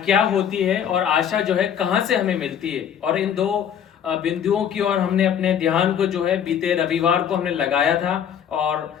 होती है और आशा जो है कहाँ से हमें मिलती है, और इन दो बिंदुओं की ओर हमने अपने ध्यान को जो है बीते रविवार को हमने लगाया था और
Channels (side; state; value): right; quieter; 8.7 dB